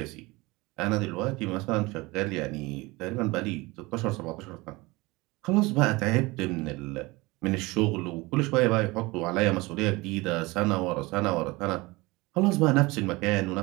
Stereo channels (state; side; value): quieter; left; 22.7 dB